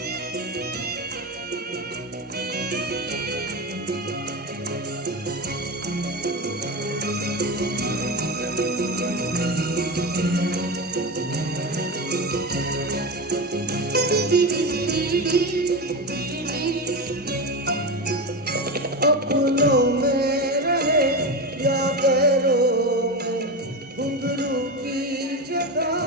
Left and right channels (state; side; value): normal; both; correlation 0.20